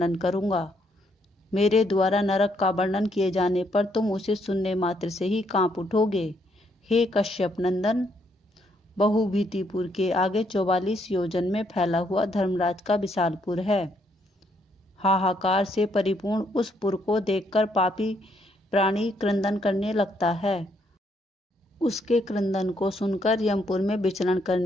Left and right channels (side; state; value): both; normal; correlation 0.72